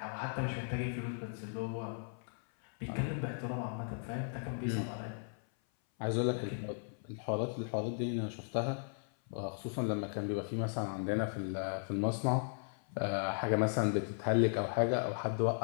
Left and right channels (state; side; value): silent; right; 53 dB below the other